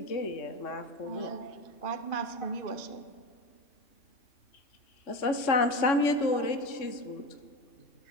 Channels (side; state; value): right; late; 3.6 ms